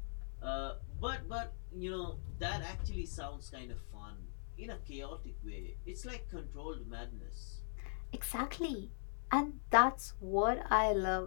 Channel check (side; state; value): right; silent; digital silence